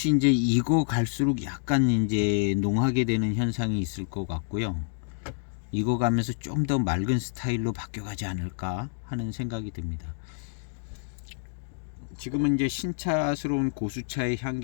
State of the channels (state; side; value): silent; right; digital silence